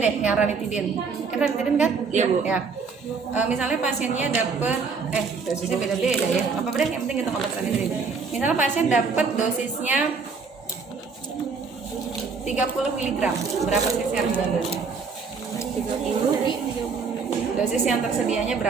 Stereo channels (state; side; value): quieter; left; 5.0 dB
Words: yang ranitidin. Ranitidin kan? Iya, Bu. Ya. Misalnya pasiennya dapet dosisnya beda-beda ya. Apa deh, yang penting hitung obat ranitidin. Misalnya pasien dapet dosisnya 30 mg. Berapa cc harus diambil? 30. Dosis yang tersedianya